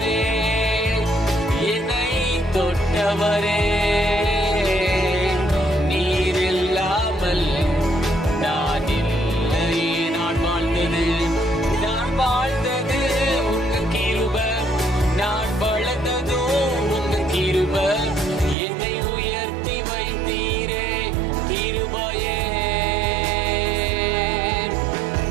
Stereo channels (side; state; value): left; drops out; at 18.6 s